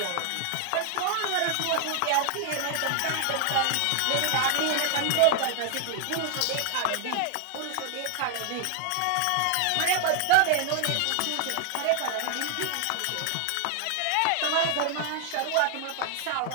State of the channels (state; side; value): different; both; correlation 0.00